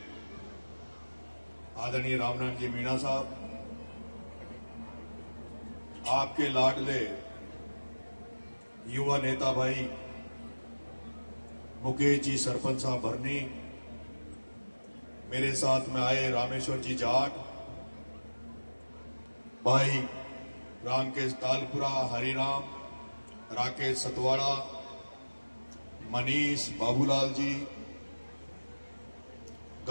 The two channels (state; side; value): inverted; both; correlation -1.00